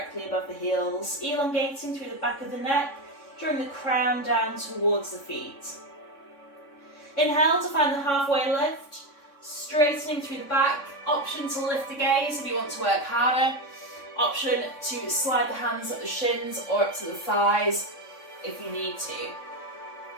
above the heels, elongating through the back of the neck, drawing the crown down towards the feet. Inhale to find the halfway lift, straightening through the back. Option to lift the gaze if you want to work harder. Option to slide the hands up the shins or up to the thighs if you need to.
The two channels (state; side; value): late; right; 3.6 ms